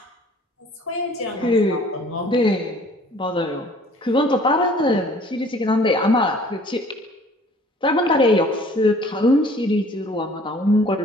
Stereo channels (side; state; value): both; normal; correlation 0.53